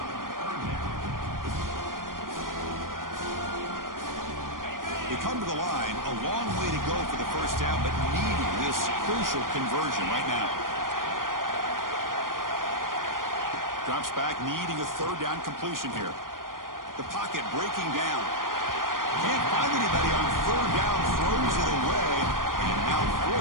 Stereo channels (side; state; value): left; late; 0.90 ms